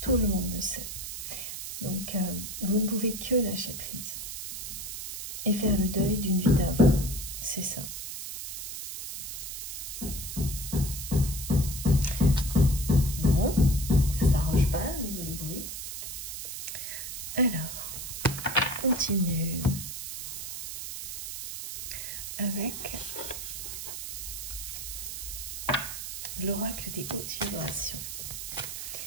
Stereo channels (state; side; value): noise; right; hiss, 7 dB below the sound